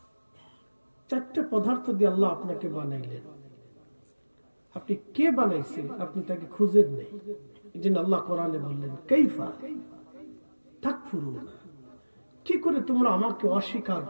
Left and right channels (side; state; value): both; inverted; correlation -1.00